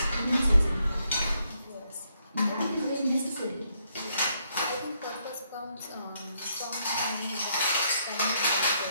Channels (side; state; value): both; inverted; correlation -0.75